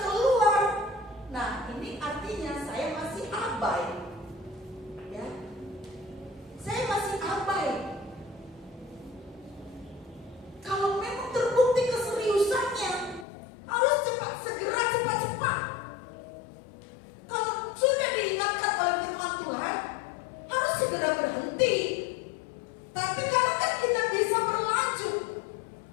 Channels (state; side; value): drops out; right; at 13.2 s